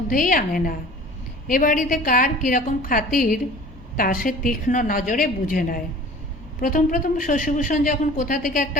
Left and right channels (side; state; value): both; normal; correlation 0.44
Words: আনে না। এ বাড়িতে কার কীরকম খাতির তা সে তীক্ষ্ণ নজরে বুঝে নেয়। প্রথম প্রথম শশীভূষণ যখন কোথা থেকে